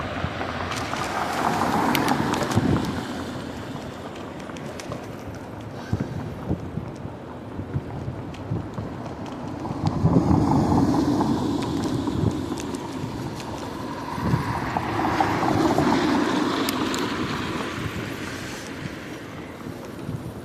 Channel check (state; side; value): identical; both; correlation 1.00